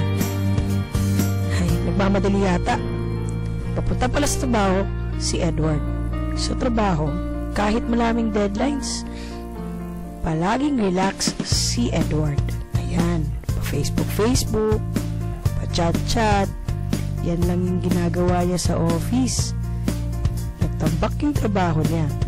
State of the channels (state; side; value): identical; both; correlation 1.00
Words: Ay, nagmamadali yata. Papunta pala sa trabaho si Edward. Sa trabaho, kahit maraming deadlines, palaging relax si Edward. Ayan, pa-Facebook, pa-chat-chat. Yan lang yung ginagawa niya sa office. Nagtambak yung trabaho niya.